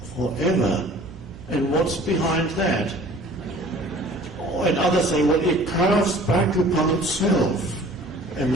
Forever. And what's behind that? And others say, well, it curves back upon itself.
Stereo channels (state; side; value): noise; right; hum, 18 dB below the sound